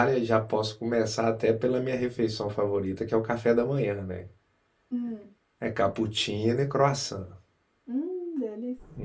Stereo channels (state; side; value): identical; both; correlation 1.00